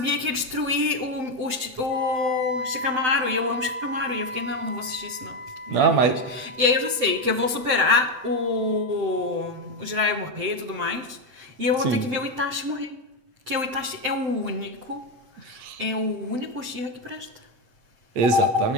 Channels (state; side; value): late; left; 7.8 ms